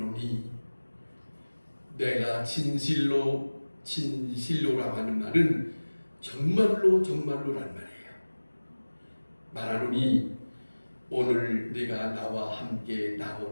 내가 진실로라고 하는 말은 정말로라는 말이에요. 말하노니 오늘 네가 나와 함께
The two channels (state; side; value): inverted; both; correlation -1.00